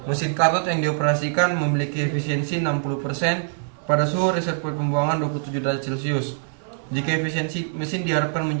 Mesin karot yang dioperasikan memiliki efisiensi 60% pada suhu reservoir pembuangan 27 derajat Celcius. Jika efisiensi mesin diharapkan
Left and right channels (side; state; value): left; silent; 63 dB below the other